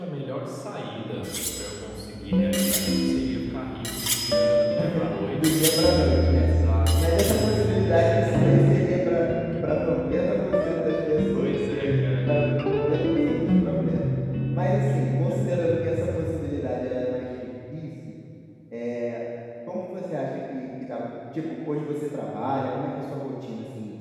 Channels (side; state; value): both; identical; correlation 1.00